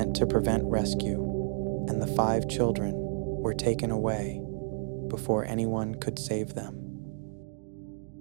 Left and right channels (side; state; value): left; silent; digital silence